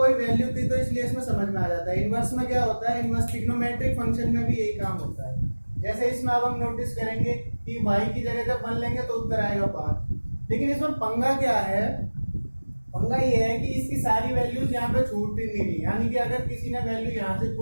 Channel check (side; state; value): both; inverted; correlation -1.00